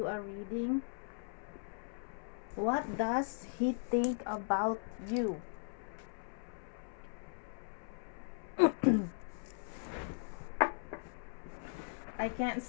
a reading. What does he think about you? I can't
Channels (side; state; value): right; silent; 52 dB below the other